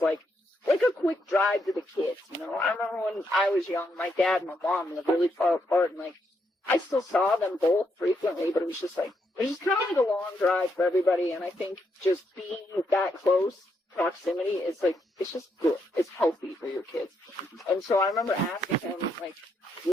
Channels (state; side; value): normal; both; correlation 0.78